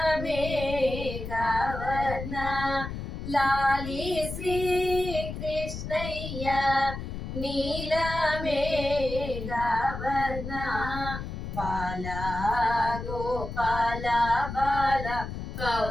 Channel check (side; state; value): left; noise; rumble, 7 dB below the sound